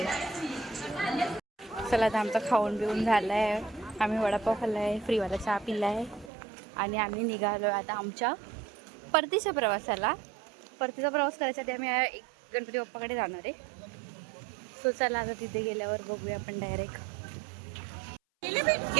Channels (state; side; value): drops out; left; at 6.3 s